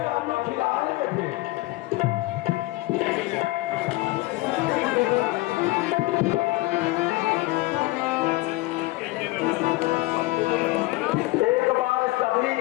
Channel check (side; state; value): right; quieter; 20.4 dB